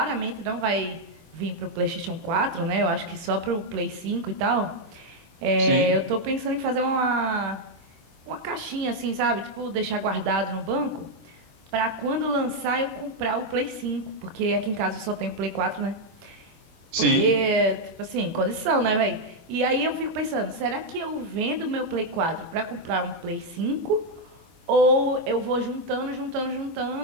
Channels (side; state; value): left; late; 24 ms